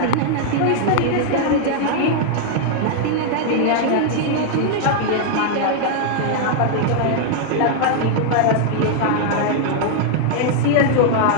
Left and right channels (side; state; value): both; different; correlation 0.00